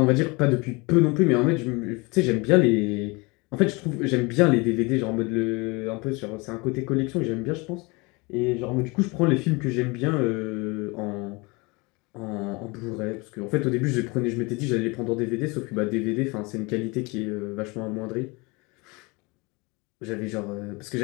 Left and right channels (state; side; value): quieter; right; 26.8 dB